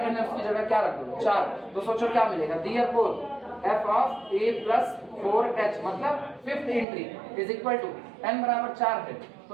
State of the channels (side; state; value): left; drops out; at 6.9 s